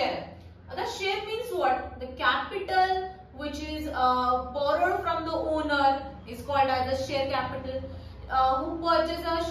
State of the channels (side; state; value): both; identical; correlation 1.00